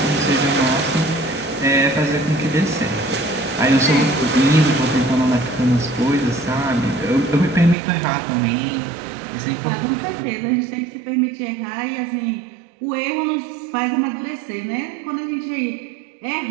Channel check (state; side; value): drops out; left; at 7.8 s